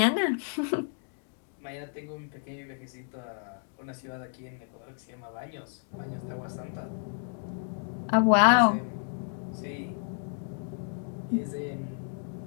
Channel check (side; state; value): right; silent; 57 dB below the other